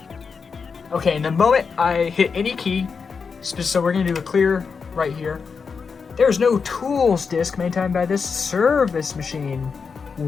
Okay, and the moment I hit any key, so we're gonna do a clear right here. There's no tools disk maintained by this service machine.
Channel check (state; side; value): quieter; right; 5.5 dB